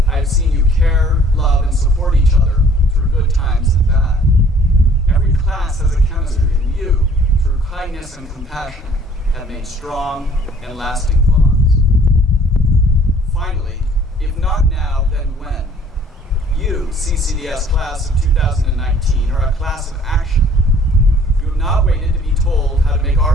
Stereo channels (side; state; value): both; normal; correlation 0.56